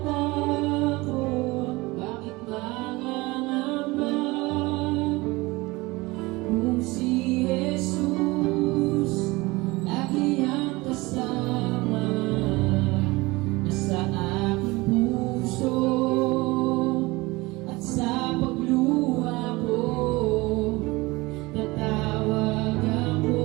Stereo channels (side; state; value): left; quieter; 22.2 dB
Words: Bakit mangangamba? Kung si Jesus lagi ang kasama, nasa aking puso at sa pagluha ko, tatawag ako,